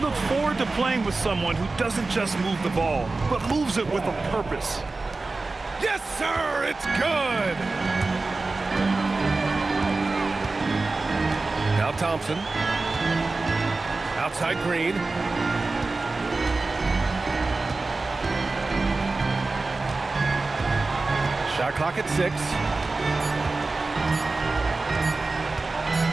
forward to playing with someone who doesn't just move the ball, but moves it with a purpose. Yes, sir! It's good! Now Thompson. Outside Green. Shot clock at 6.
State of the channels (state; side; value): quieter; left; 3.5 dB